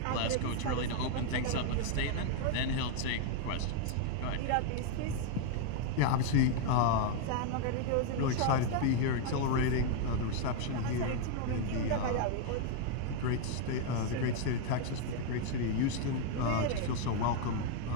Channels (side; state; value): both; different; correlation 0.00